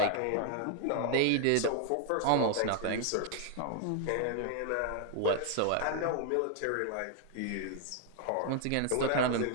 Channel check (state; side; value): different; both; correlation 0.00